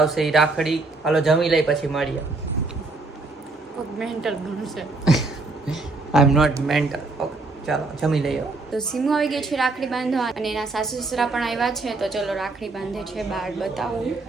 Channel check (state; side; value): quieter; left; 3.5 dB